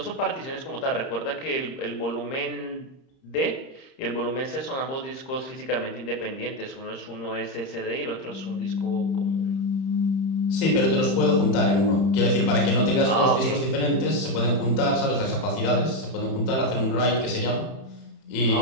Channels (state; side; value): late; right; 30 ms